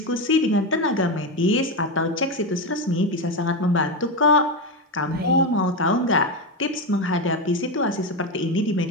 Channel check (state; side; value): normal; both; correlation 0.13